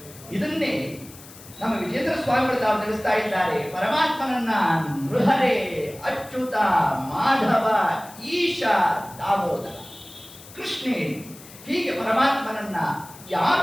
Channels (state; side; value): noise; left; hiss, 19 dB below the sound